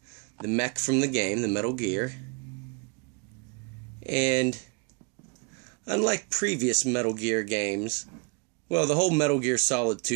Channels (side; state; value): left; quieter; 34.2 dB